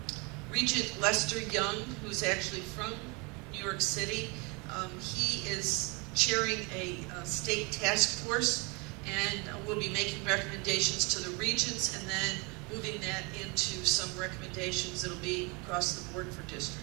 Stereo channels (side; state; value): left; quieter; 29.4 dB